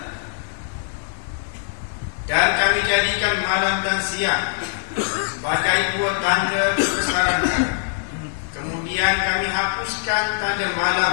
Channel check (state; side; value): silent; right; digital silence